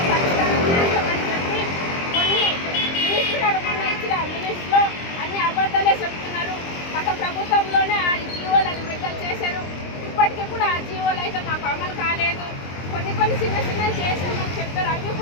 పరిష్కారం చేస్తామని చెప్పి కొన్ని మినిస్టర్ మొన్న ఇచ్చిన మినిస్ట్లో అన్ని అబద్ధాలే చెప్తున్నారు. గత ప్రభుత్వంలోనే ఆ జీవోలను విడుదల చేశారు. ఇప్పటికీ కూడా ఆ జీవోలు అయితే మాకు అమలు కాలేదు. కొన్ని చిన్నవి చేసామని చెప్పారు, అవి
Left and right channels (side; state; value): right; late; 23 ms